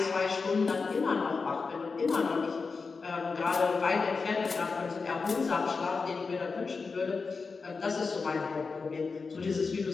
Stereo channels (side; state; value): right; quieter; 4.6 dB